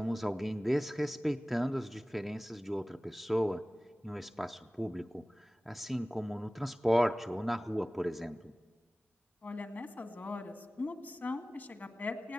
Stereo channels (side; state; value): both; normal; correlation 0.98